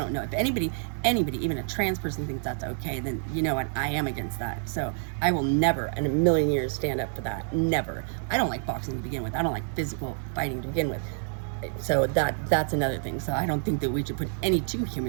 know if anybody, even a trans person, thinks that's okay, then you know what, I am against that. So I will never in a million years stand up for that, never. I don't like boxing to begin with, I don't like physical fighting to begin with. So that's another thing. So I don't think that we should put any two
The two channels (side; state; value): left; silent; 57 dB below the other